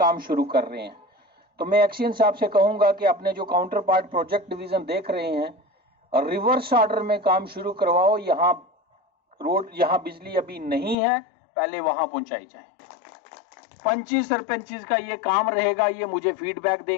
शुरू कर रहे हैं। तो मैं एक्शन साहब से कहूंगा कि अपने जो काउंटर पार्ट प्रोजेक्ट डिवीजन देख रहे हैं और रिवर्स ऑर्डर में काम शुरू करवाओ। यहाँ रोड, यहाँ बिजली अभी नहीं है, पहले वहां पहुंचाई जाए। पंचिस सरपंचिस का ये काम रहेगा, ये मुझे फीडबैक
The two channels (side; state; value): right; drops out; at 11.0 s